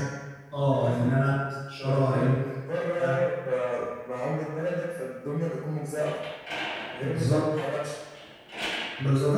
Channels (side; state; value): both; identical; correlation 1.00